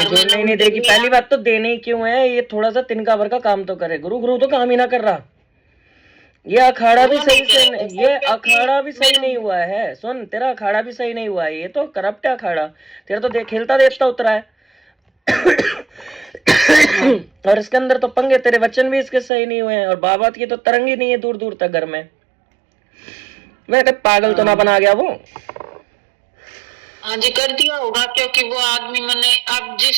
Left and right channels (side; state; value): left; drops out; at 19.3 s